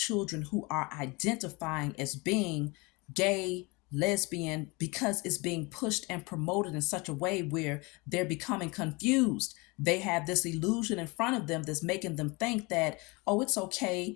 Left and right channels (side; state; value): right; quieter; 26.5 dB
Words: who are identifying as being gay, lesbian, because it's being pushed and promoted in such a way where they're becoming confused. They have this illusion in front of them that's making them think that, oh, it's okay